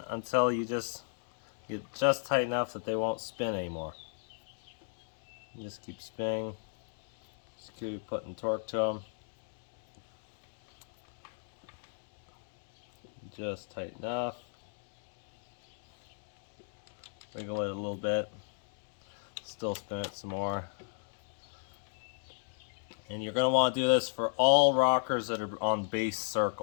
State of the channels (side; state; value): right; silent; digital silence